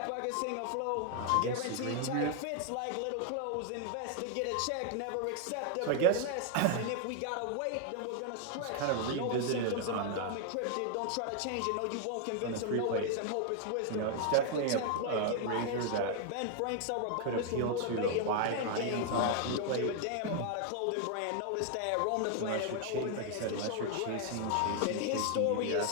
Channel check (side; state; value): both; different; correlation 0.00